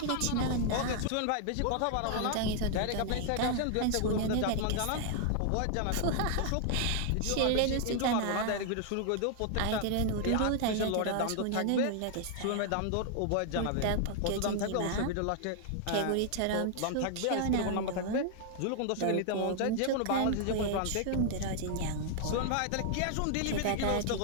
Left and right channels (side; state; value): both; different; correlation 0.00